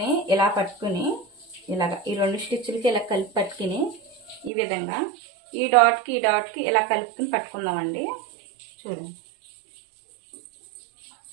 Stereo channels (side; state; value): left; drops out; at 4.5 s